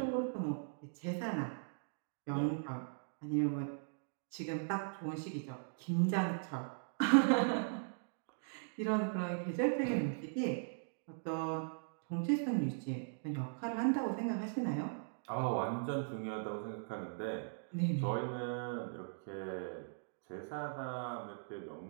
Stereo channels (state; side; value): silent; left; digital silence